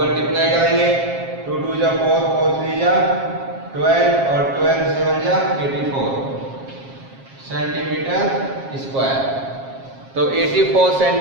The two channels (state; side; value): late; left; 7.4 ms